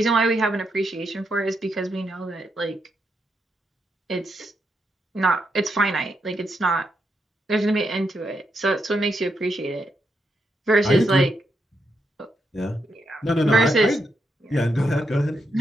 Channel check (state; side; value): normal; both; correlation 0.82